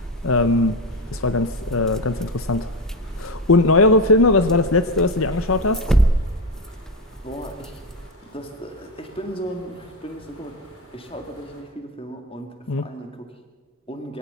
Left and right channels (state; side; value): normal; both; correlation 0.14